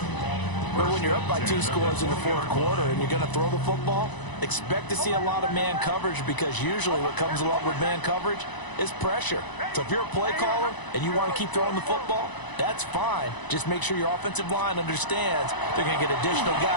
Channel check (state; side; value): late; right; 1.0 ms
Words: But when you're up by 2 scores in the 4th quarter and you're going to throw the football, expect to see a lot of man coverage, because usually what comes along with man coverage is pressure. So if you're a play caller and you want to keep throwing the football, that's fine. Just make sure your offensive line understands they're going to get additional